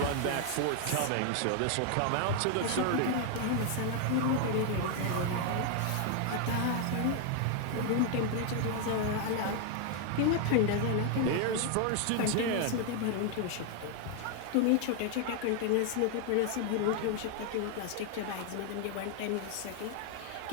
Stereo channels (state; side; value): different; both; correlation 0.00